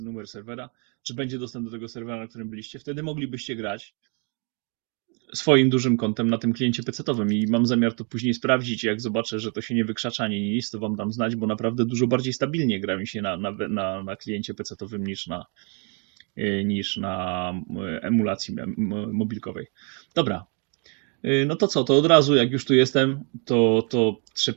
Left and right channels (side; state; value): left; quieter; 36.9 dB